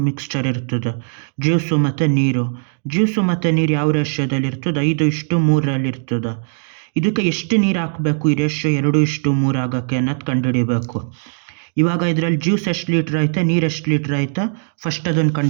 ಮಿಕ್ಸ್ಚರ್ ಇರ್ತದೆ, ಜ್ಯೂಸು ಮತ್ತು ನೀರು. ಜ್ಯೂಸು ಮತ್ತು ನೀರು ಯಾವ ರೇಷ್ಯೋದಲ್ಲಿ ಇರ್ತದೆ? 5:3 ಇರ್ತದೆ. ಇದಕ್ಕೆ ಎಷ್ಟು ನೀರು ಹಾಕಬೇಕು ಈ ರೇಷ್ಯೋ 2:3 ಆಗೋಕ್ಕೆ ಅನ್ನೋದು ಕಂಡುಹಿಡಿಬೇಕು. ಇವಾಗ ಇದರಲ್ಲಿ ಜ್ಯೂಸ್ ಎಷ್ಟು ಲೀಟ್ರ್ ಐತೆ, ನೀರು ಎಷ್ಟು ಲೀಟ್ರ್ ಐತೆ, ಫಸ್ಟ್ ಅದನ್ನು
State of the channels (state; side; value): silent; left; digital silence